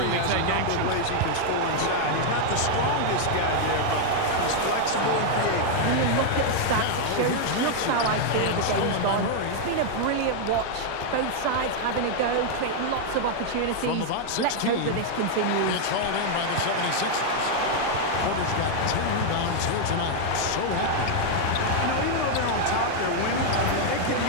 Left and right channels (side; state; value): both; different; correlation 0.00